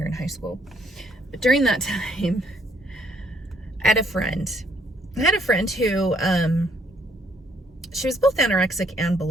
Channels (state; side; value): normal; both; correlation 0.67